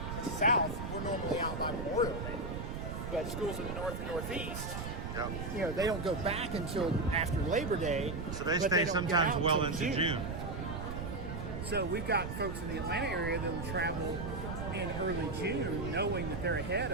In the south, we're normally out by Memorial Day, but schools in the north and northeast, they don't go back until after Labor Day. So they stay sometimes well into June. So we've got folks in the Atlanta area that will travel in early June, knowing that they're ahead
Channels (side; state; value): right; noise; rumble, 5 dB below the sound